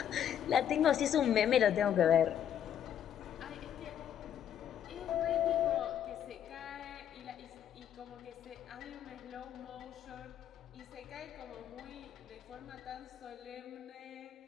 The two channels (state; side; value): quieter; right; 9.6 dB